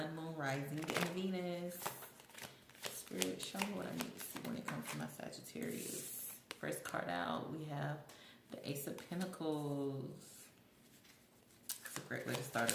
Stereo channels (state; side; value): identical; both; correlation 1.00